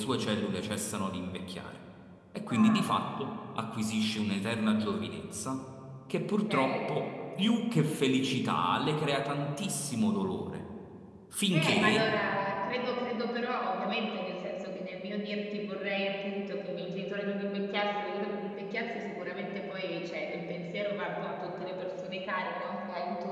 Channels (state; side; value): identical; both; correlation 1.00